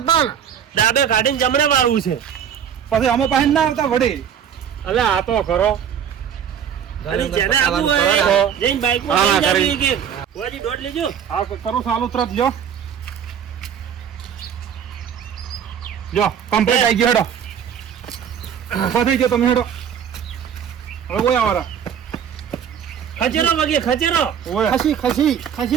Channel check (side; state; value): left; quieter; 8.5 dB